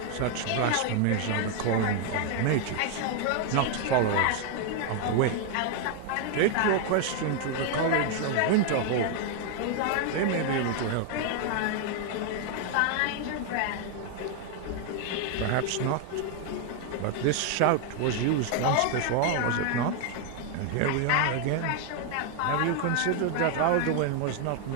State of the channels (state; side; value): different; both; correlation 0.00